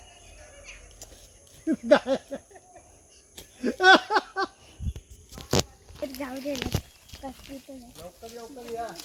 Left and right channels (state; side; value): identical; both; correlation 1.00